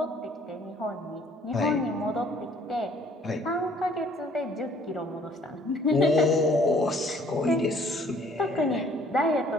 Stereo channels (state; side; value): normal; both; correlation 0.58